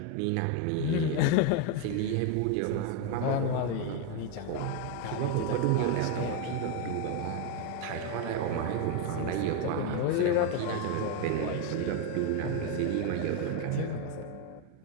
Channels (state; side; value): different; both; correlation 0.02